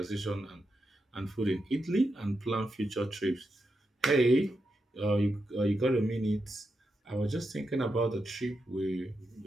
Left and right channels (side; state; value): both; normal; correlation 0.86